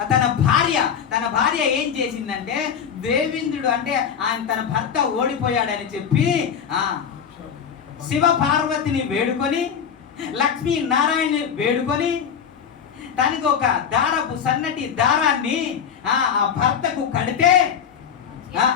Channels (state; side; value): quieter; right; 7.7 dB